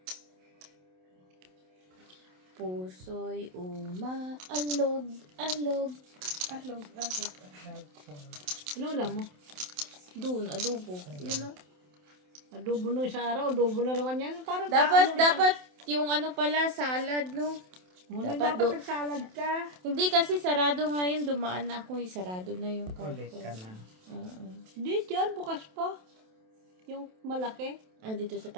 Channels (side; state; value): left; late; 27 ms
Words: Puso'y umaalog, alog. Alog. Ano ulam mo? Doon, adobo. Yun o. Adobo nung isang araw. Adobo na naman yan. Parang Dapat yung ano pala, salad, no? Muna dapat dapat nagsalad ka. Hindi kasi sarado nga yun. Dumaan na ako, sarado na yung Ulit carton. ka na. Hindi dyan. Bukas pa. Yung malaki. Dito sa